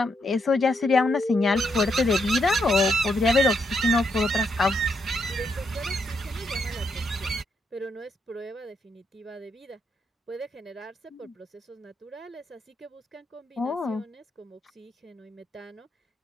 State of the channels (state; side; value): normal; both; correlation 0.78